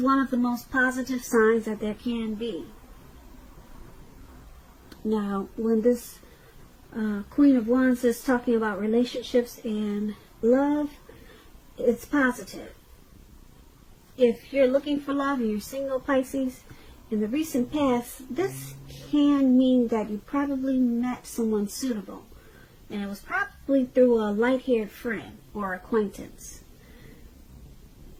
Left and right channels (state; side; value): identical; both; correlation 1.00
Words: one of the most positive signs that there can be. Now, when this Queen of Wands is talking about relationships and love, it's positive. If you're looking for love and you're single, Pisces, in the recent past, this can mean that you probably met someone suitable. And it was probably through a light-haired friend or acquaintance.